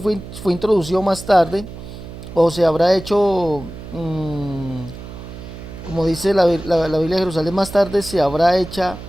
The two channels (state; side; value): noise; right; hum, 13 dB below the sound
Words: introducido más tarde, o se habrá hecho, como dice la Biblia de Jerusalén, más tarde se habrá hecha